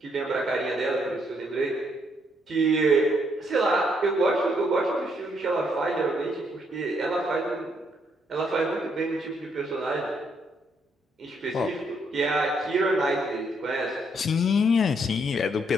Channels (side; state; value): both; normal; correlation 0.72